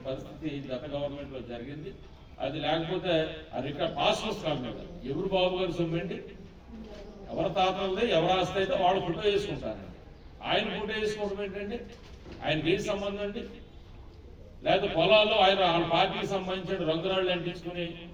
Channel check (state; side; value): identical; both; correlation 1.00